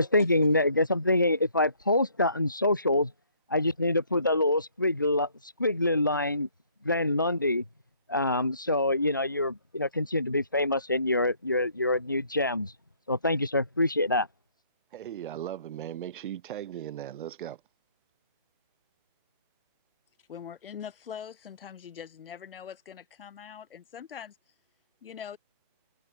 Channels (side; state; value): both; inverted; correlation -0.62